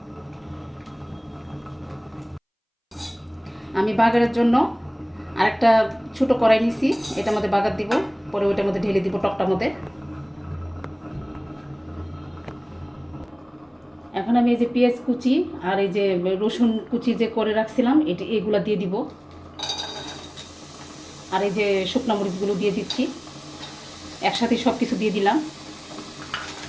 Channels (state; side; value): identical; both; correlation 1.00